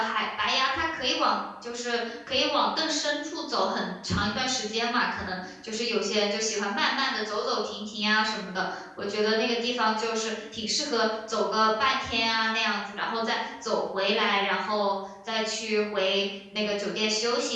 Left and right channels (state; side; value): identical; both; correlation 1.00